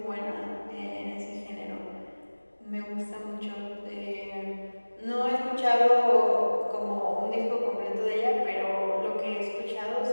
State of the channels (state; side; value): inverted; both; correlation -1.00